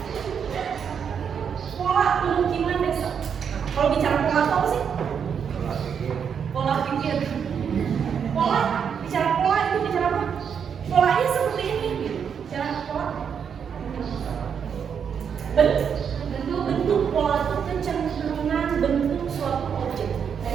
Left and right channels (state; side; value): quieter; left; 7.3 dB